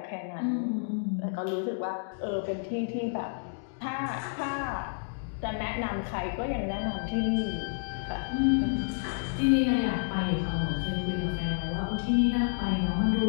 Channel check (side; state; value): right; silent; digital silence